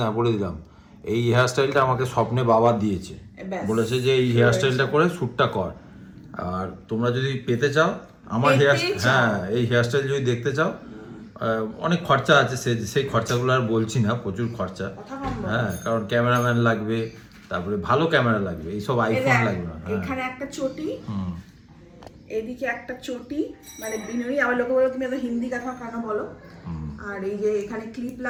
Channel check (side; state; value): both; identical; correlation 1.00